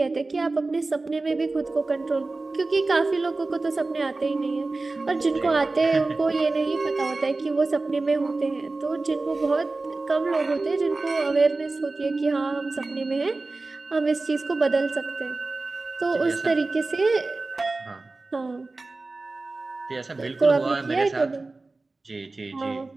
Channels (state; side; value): quieter; left; 3.4 dB